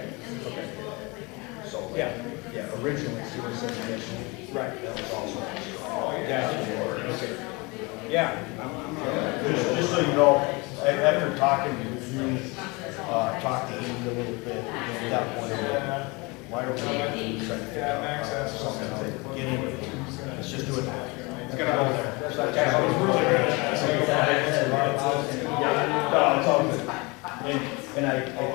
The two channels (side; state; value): right; quieter; 26.7 dB